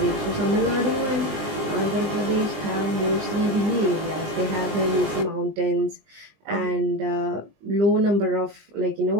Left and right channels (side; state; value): left; late; 20 ms